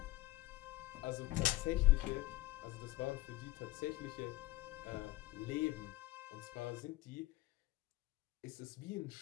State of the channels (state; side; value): quieter; right; 17.7 dB